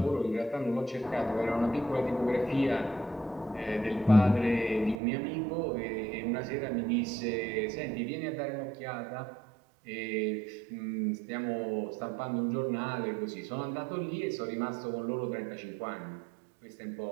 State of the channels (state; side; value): drops out; left; at 5.0 s